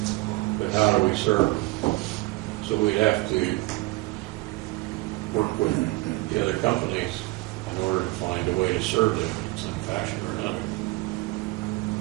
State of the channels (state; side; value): quieter; left; 21.8 dB